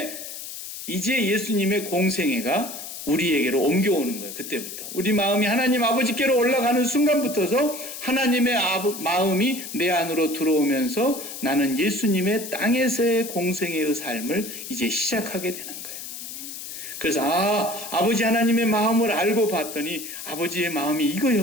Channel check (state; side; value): noise; left; hiss, 10 dB below the sound